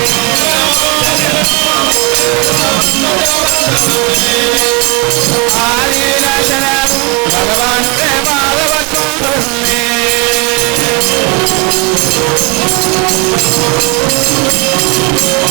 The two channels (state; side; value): quieter; left; 29.1 dB